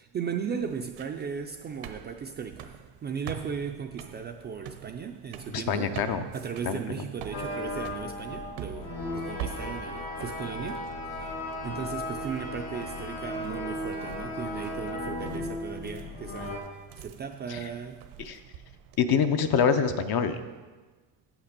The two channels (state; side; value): normal; both; correlation 0.14